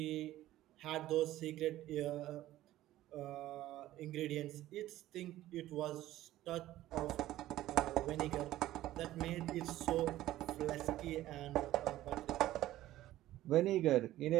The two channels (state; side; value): quieter; left; 14.7 dB